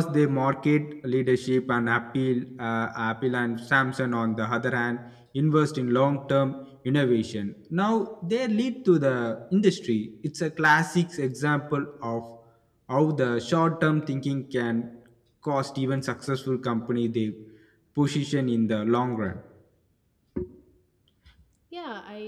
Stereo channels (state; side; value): identical; both; correlation 1.00